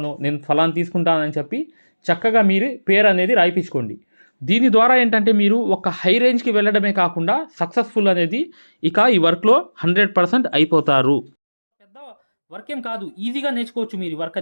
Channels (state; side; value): inverted; both; correlation -1.00